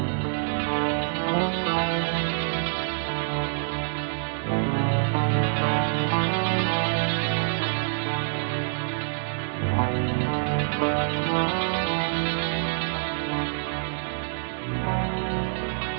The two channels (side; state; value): left; silent; 61 dB below the other